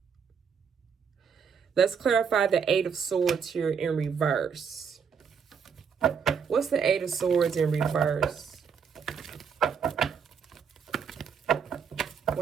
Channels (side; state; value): left; quieter; 6.6 dB